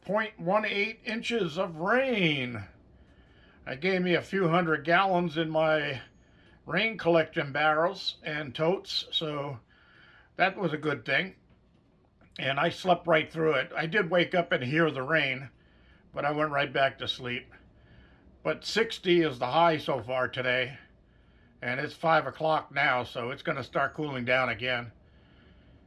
0.18 inches of rain. It gave me a few hundred gallons in my rain collection barrels and totes, so that was a good thing. And I slept right through it. I did wake up and hear the rain, but I went right back to sleep. But 60 is the high so far today, and it's 5 o'clock now, so it's going to start cooling down again.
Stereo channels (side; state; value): both; identical; correlation 1.00